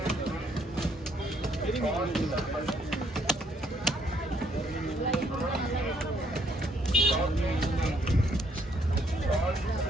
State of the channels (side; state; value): both; normal; correlation 0.69